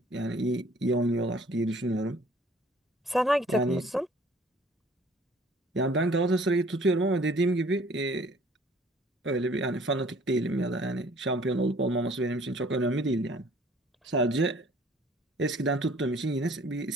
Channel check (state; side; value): normal; both; correlation 0.55